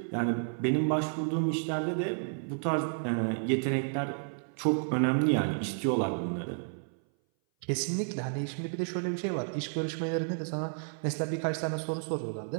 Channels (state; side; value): silent; left; 57 dB below the other